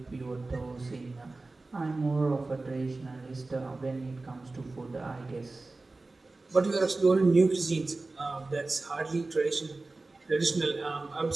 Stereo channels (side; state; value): left; quieter; 3.3 dB